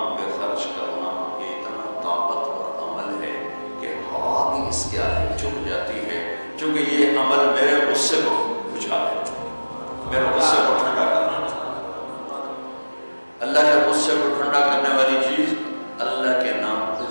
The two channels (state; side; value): inverted; both; correlation -1.00